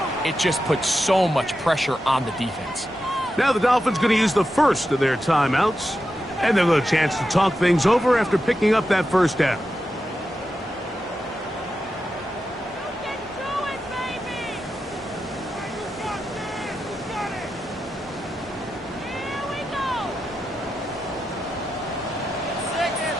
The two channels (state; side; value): normal; both; correlation 0.89